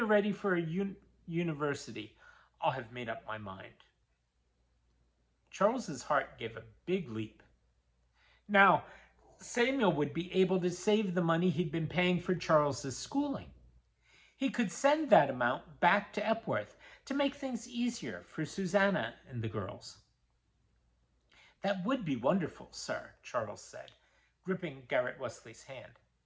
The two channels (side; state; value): both; identical; correlation 1.00